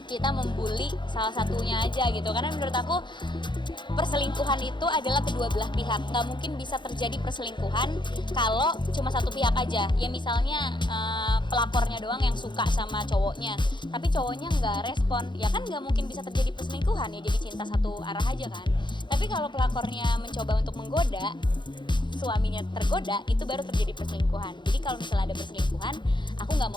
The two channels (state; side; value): late; right; 0.23 ms